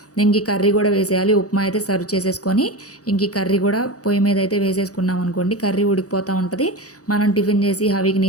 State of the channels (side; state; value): right; late; 0.67 ms